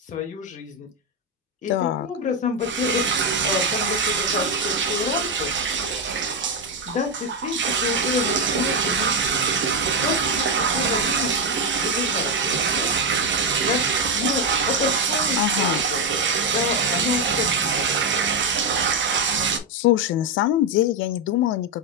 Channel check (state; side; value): normal; both; correlation 0.06